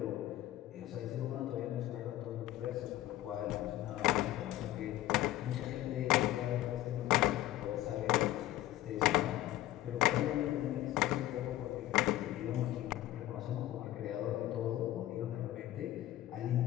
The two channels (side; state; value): right; quieter; 14.7 dB